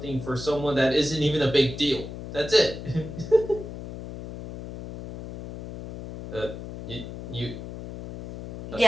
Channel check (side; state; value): left; noise; hum, 10 dB below the sound